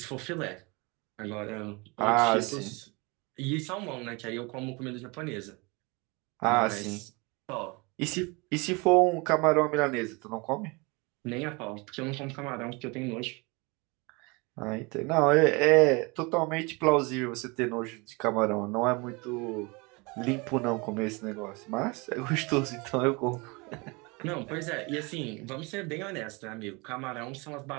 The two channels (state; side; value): quieter; left; 27.6 dB